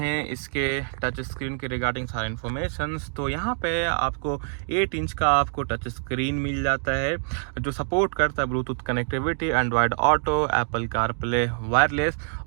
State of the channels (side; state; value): left; silent; digital silence